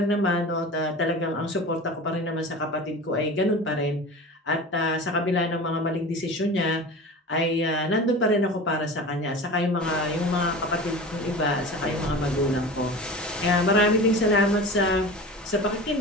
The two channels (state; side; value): normal; both; correlation 0.34